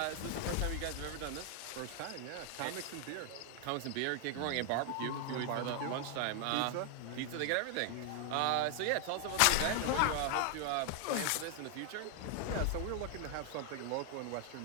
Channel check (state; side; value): different; both; correlation 0.00